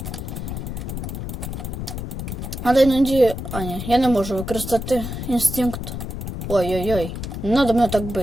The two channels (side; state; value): left; noise; rumble, 6 dB below the sound